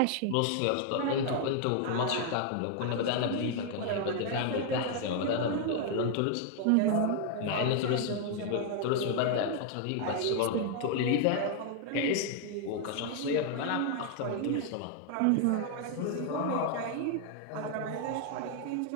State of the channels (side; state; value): both; different; correlation 0.00